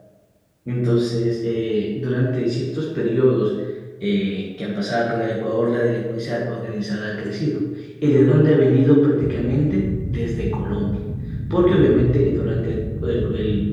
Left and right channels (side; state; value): both; identical; correlation 1.00